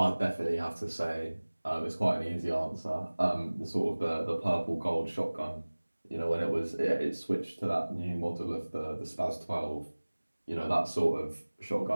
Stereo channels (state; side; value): inverted; both; correlation -1.00